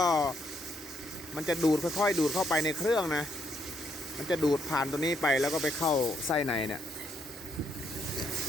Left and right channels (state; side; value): normal; both; correlation 0.74